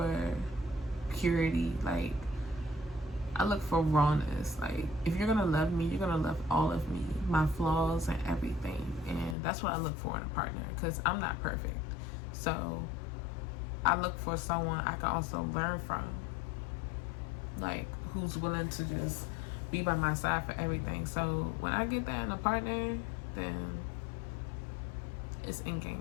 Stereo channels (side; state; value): right; drops out; at 9.3 s